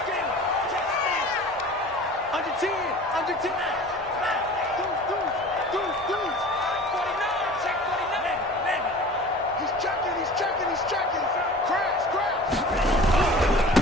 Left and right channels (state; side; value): normal; both; correlation 0.41